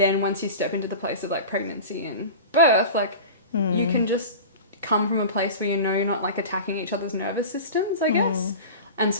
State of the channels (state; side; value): inverted; both; correlation -0.33